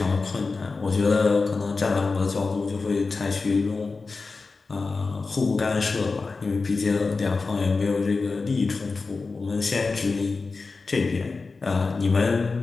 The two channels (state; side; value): quieter; right; 4.1 dB